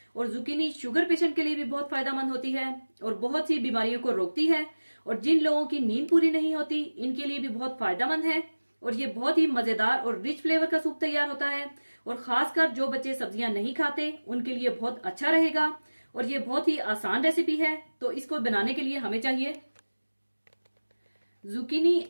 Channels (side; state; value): both; inverted; correlation -1.00